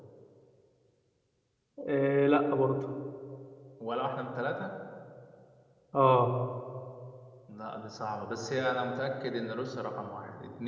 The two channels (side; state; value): both; identical; correlation 1.00